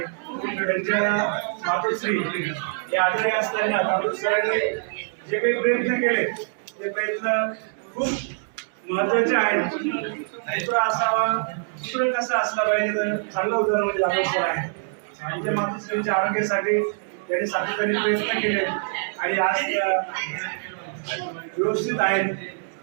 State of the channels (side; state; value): left; silent; digital silence